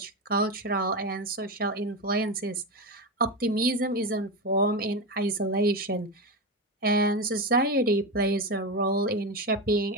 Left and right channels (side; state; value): both; normal; correlation 0.17